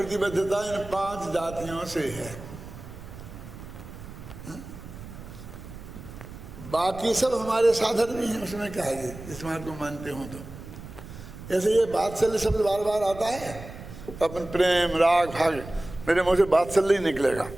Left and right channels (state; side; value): noise; right; rumble, 14 dB below the sound